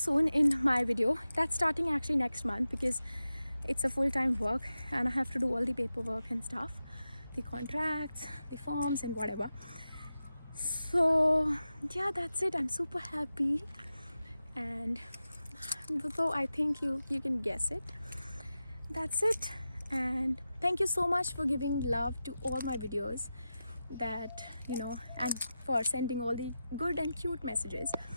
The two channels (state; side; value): inverted; both; correlation -0.92